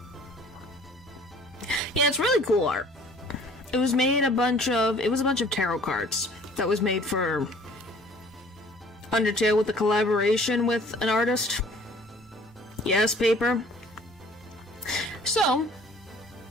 Yeah, it's really cool art. It was a bunch of tarot cards that was made for Undertale with a collaboration with an artist. Yes, paper. So,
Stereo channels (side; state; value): both; normal; correlation 0.52